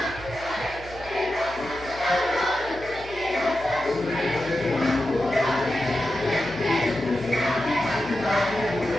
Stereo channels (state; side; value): noise; left; hum, 17 dB below the sound